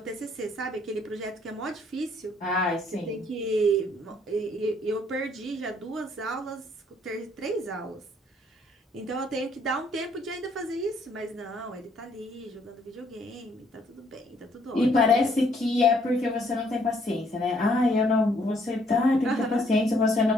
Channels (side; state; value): both; normal; correlation 0.65